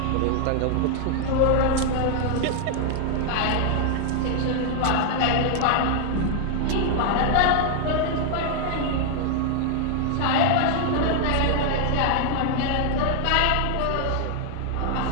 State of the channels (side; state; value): both; different; correlation 0.00